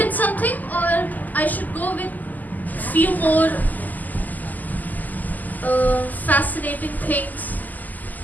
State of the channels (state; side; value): late; right; 0.083 ms